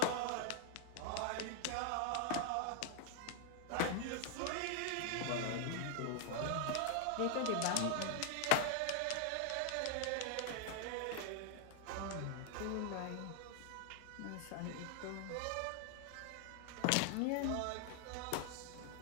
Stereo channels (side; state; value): both; different; correlation 0.00